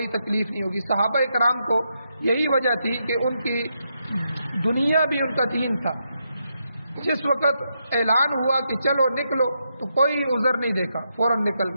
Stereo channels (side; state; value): both; inverted; correlation -0.82